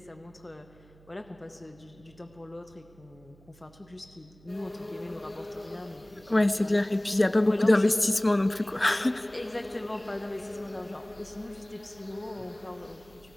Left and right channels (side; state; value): right; noise; hum, 26 dB below the sound